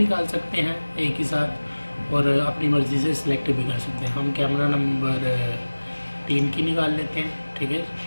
सकते हैं एक ही साथ और अपनी मर्ज़ी से सिलेक्ट भी कर सकते हैं। हम कैमरा नंबर 3 की निकाल लेते हैं। ठीक है,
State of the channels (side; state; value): both; inverted; correlation -1.00